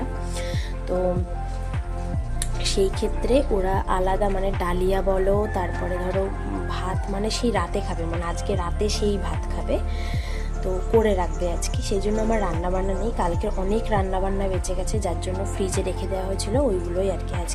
তো সেই ক্ষেত্রে ওরা আলাদা ডালিয়া বলো, তারপরে ধরো ভাত সেই রাতে খাবে, আজকে রাতে সেই ভাত খাবে, তো করে রাখবে আজকে। সেই জন্য আমার রান্নাবান্না নেই। কালকে অনেক রান্নাবান্না বেঁচে গেছে, যার জন্য ফ্রিজে রেখে দেওয়া হয়েছিল, ওইগুলোই আর কি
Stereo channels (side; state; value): both; identical; correlation 1.00